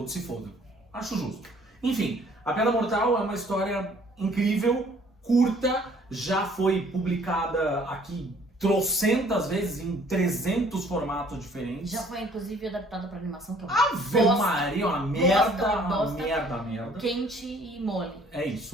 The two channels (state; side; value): normal; both; correlation 0.58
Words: se fodam. Acho justo. Enfim, A Piada Mortal é uma história incrível, curta, já foi publicada aqui trocentas vezes em 300 formatos diferentes. Já foi, inclusive, adaptada pra animação, que é uma Ave Maria, uma merda. Quente e mole. É